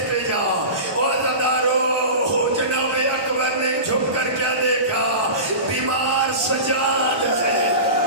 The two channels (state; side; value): late; left; 1.2 ms